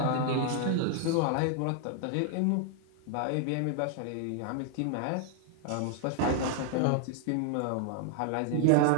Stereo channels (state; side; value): different; both; correlation 0.00